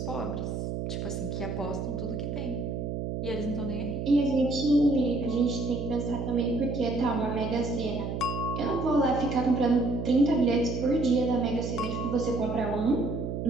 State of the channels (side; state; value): right; noise; hum, 4 dB below the sound